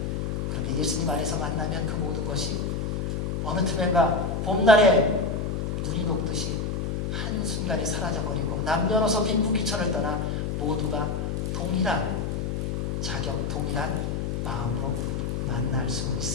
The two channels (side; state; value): left; noise; hum, 1 dB below the sound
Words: 그런데 예수님 안에서 만나면 그 모든 것이 어느 틈엔가 봄날에 눈이 녹듯이 한순간에 사라져버리고 남녀노소 빈부귀천을 떠나 모두가 동일한 자격, 동일한 마음으로 만날 수